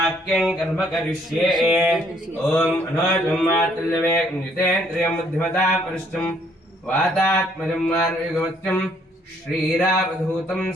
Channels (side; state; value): both; normal; correlation 0.66